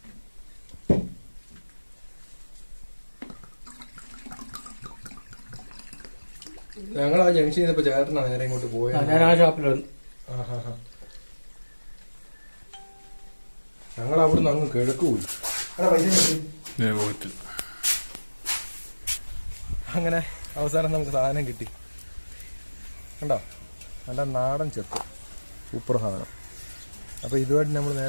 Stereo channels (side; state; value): both; inverted; correlation -1.00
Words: ഞങ്ങൾ ആ ജംഗ്ഷനിൽ നിന്നപ്പോ ചേട്ടനാണ് നേരെ ഇങ്ങോട്ട് പോയത്. ഞാൻ ആ ഷാപ്പിലാണ്. ഞങ്ങൾ അവിടുന്ന് അങ്ങ് കിഴക്ക് പോയി. അങ്ങനെ അവസാനം നമുക്ക് സാധനം കിട്ടി. കണ്ടോ, നല്ല നാടൻ ചെത്ത്, സൂപ്പർ സാധനം. അപ്പോൾ ഇതുമായിട്ട് നമ്മൾ